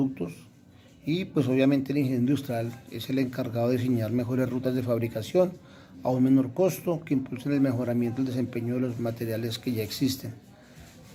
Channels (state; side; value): identical; both; correlation 1.00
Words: y pues obviamente el ingeniero industrial es el encargado de diseñar mejores rutas de fabricación a un menor costo que impulsen el mejoramiento del desempeño de los materiales que ya existen.